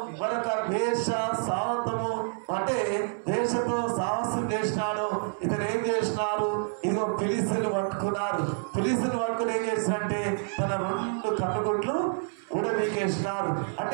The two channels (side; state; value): left; silent; 59 dB below the other